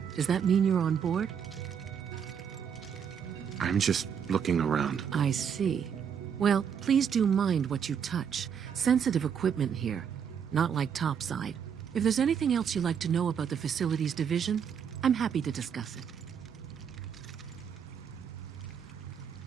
does that mean you're on board? I'm just looking around. I see. Well, please do mind what you touch. Sensitive equipment here, not like topside. If there's anything else you'd like to know about the Facilities Division, I'm happy to discuss it.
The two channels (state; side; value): quieter; left; 7.6 dB